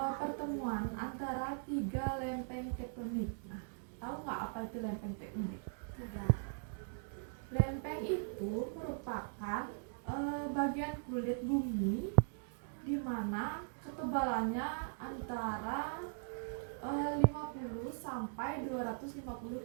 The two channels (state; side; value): silent; left; digital silence